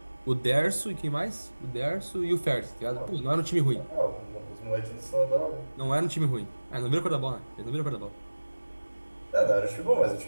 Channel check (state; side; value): inverted; both; correlation -1.00